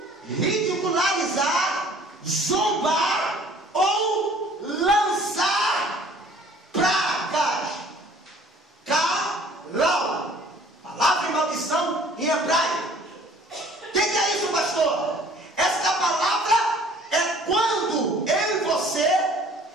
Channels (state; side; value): normal; both; correlation 0.53